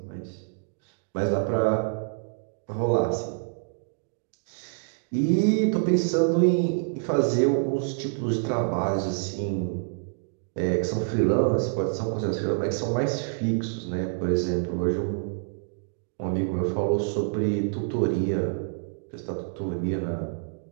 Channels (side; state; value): left; silent; digital silence